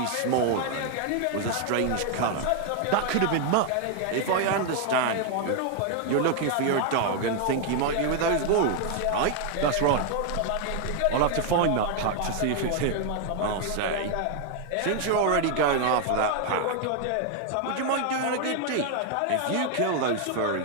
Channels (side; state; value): both; different; correlation 0.00